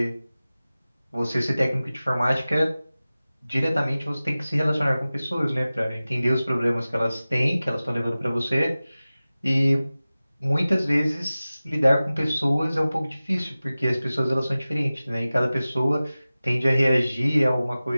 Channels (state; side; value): inverted; both; correlation -0.97